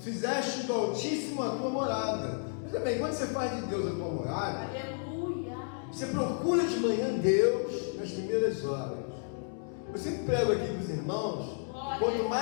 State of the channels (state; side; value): silent; right; 56 dB below the other